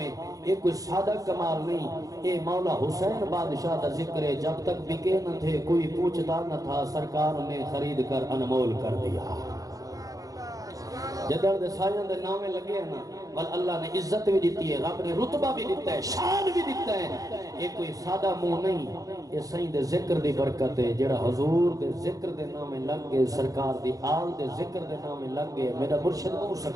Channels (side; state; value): left; late; 0.17 ms